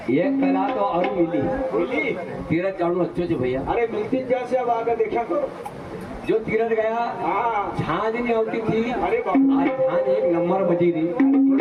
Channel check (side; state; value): both; identical; correlation 1.00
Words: ये कला तो और मिली तीरथ जाऊँ अच्छे जो भैया। अरे मिलती जैसे अब आकर देखा करो जो तीरथ गया हाँ झांझ नहीं होती थी, अरे बाबा आज झांझ 1 नंबर बजी थी।